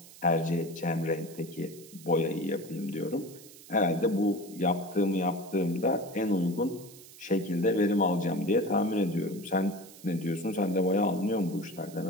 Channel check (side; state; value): right; noise; hiss, 19 dB below the sound